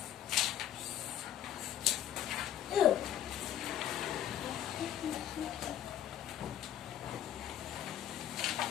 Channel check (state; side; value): quieter; right; 11.1 dB